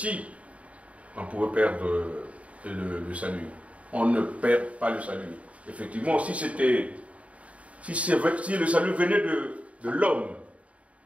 on pouvait perdre le salut, on ne perd pas le salut. Effectivement, si le salut venait de l'homme,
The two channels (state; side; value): late; left; 0.065 ms